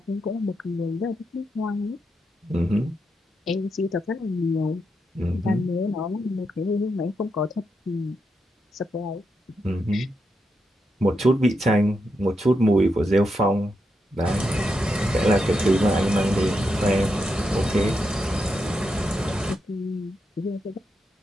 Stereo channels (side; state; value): both; normal; correlation 0.84